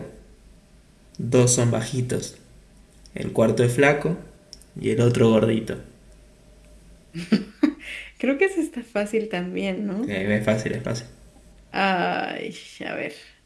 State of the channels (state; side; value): identical; both; correlation 1.00